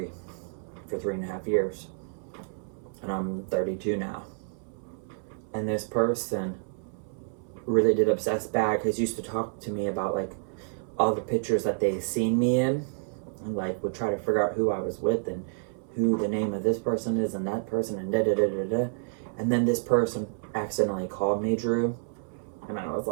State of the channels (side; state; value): left; silent; 59 dB below the other